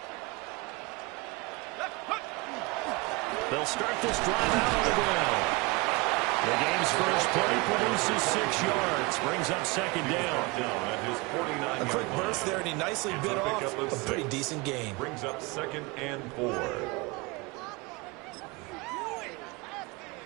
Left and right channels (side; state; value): left; quieter; 25.7 dB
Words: They'll start this drive out on the ground. The game's first play produces 6 yards, brings up second down. A quick burst there, and he nicely bit off a pretty decent gain. Brings up 2nd and 4.